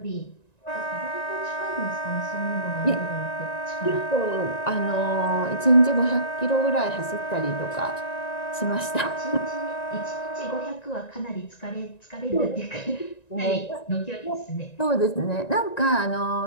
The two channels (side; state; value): right; late; 1.9 ms